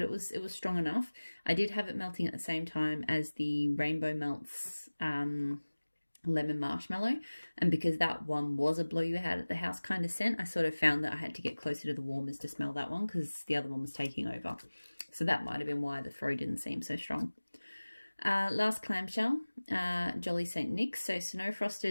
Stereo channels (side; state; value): both; inverted; correlation -1.00